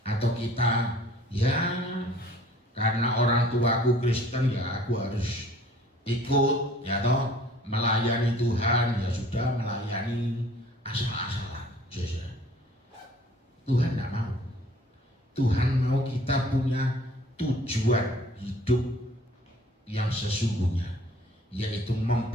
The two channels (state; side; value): normal; both; correlation 0.53